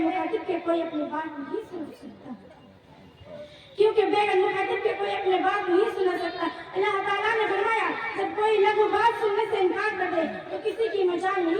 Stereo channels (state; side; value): identical; both; correlation 1.00